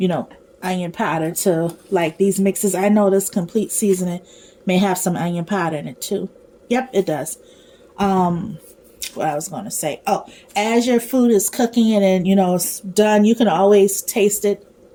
know, onion powder to like these mixes. I know this complete seasoning may have some onion powder in it too. Yep, it does. What I was going to say. Oh, as your food is cooking and you know it's done, you can always taste it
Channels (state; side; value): identical; both; correlation 1.00